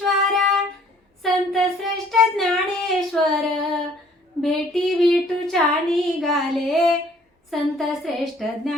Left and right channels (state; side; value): normal; both; correlation 0.58